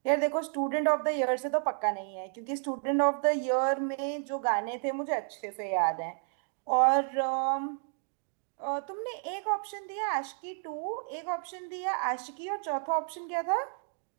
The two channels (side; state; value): left; silent; 57 dB below the other